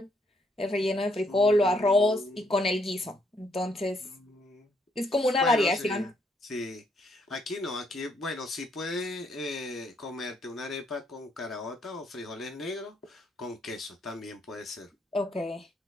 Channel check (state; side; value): normal; both; correlation 0.72